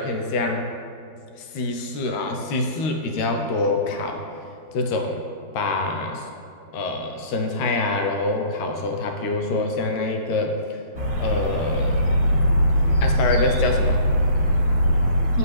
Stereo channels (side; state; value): right; late; 13 ms